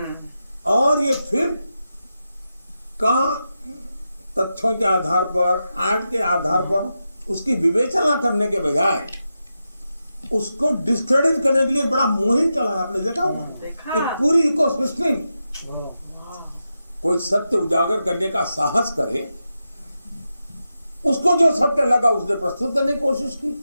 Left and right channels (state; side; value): inverted; both; correlation -0.89